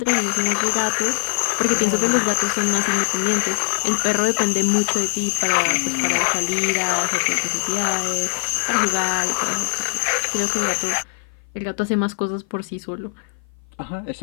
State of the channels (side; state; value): right; silent; 56 dB below the other